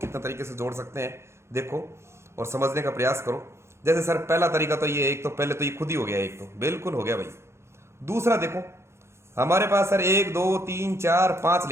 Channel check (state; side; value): late; left; 0.13 ms